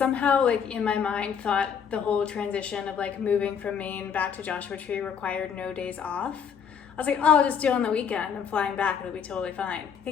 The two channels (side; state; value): right; quieter; 7.2 dB